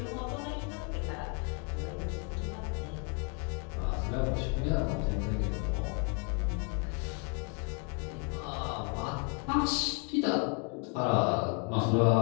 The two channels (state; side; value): quieter; right; 35.7 dB